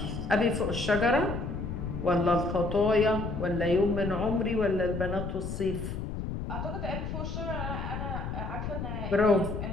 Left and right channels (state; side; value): noise; left; rumble, 5 dB below the sound